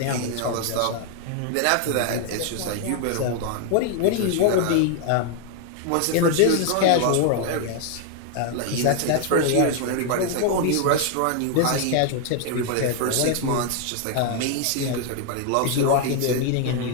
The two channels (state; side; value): different; both; correlation 0.00